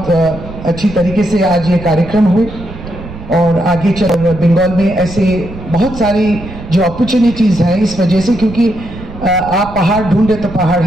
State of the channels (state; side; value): noise; right; rumble, 13 dB below the sound